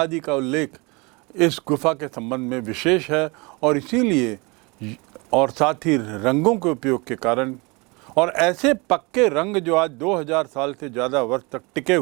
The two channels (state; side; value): quieter; left; 27.7 dB